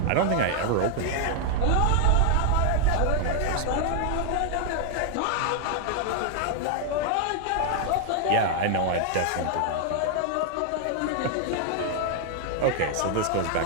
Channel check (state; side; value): different; both; correlation 0.00